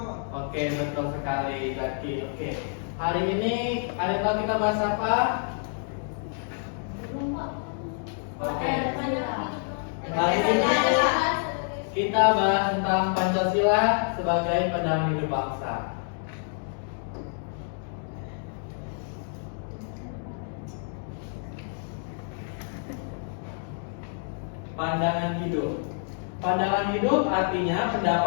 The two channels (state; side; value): silent; right; 59 dB below the other